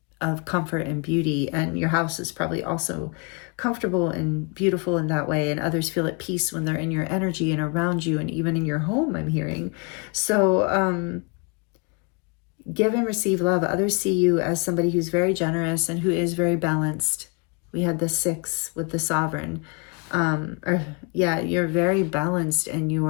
comfort and beauty. And your house is probably also comfortable and beautiful in that way, and others feel at peace when they're in your energy and around you, and even in your home, I'm hearing. So give and receive love. Others see you as somebody who's very generous and who is very balanced. We had the 6 with the sovereign. You're very balanced in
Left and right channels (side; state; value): right; quieter; 33.1 dB